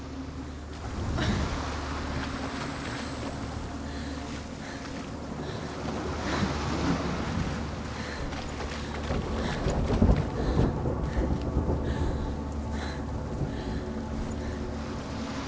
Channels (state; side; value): identical; both; correlation 1.00